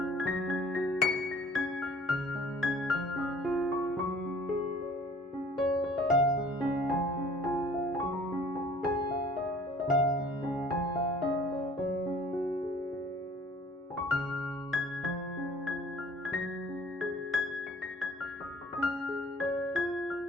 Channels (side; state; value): both; normal; correlation 0.53